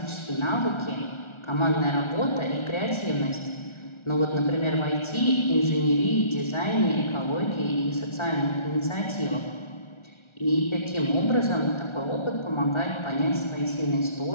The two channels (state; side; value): late; right; 1.4 ms